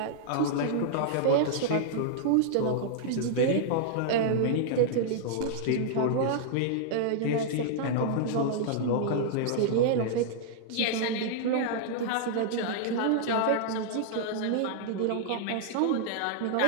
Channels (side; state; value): both; different; correlation -0.01